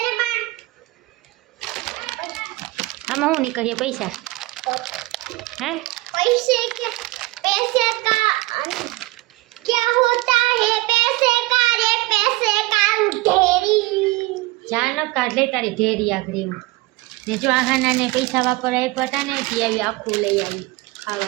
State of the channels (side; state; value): left; quieter; 21.2 dB